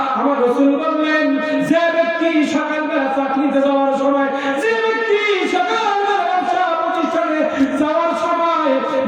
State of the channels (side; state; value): both; identical; correlation 1.00